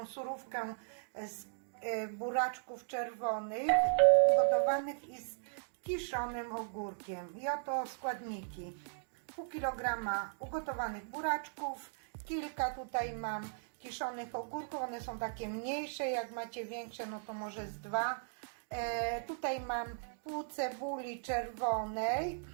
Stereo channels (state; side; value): silent; left; digital silence